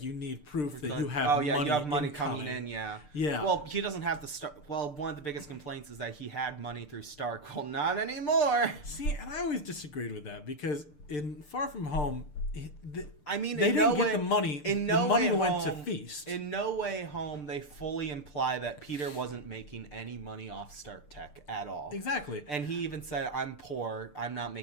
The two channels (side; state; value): right; late; 6.7 ms